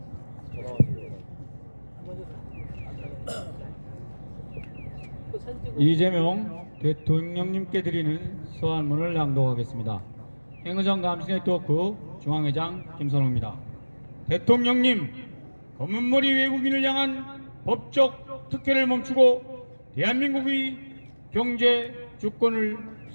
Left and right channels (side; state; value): both; inverted; correlation -1.00